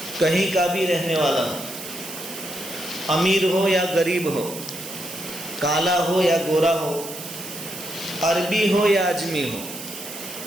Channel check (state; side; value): noise; right; hiss, 10 dB below the sound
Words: کہیں کا بھی رہنے والا ہو، امیر ہو یا غریب ہو، کالا ہو یا گورا ہو، عربی ہو یا اجمی ہو،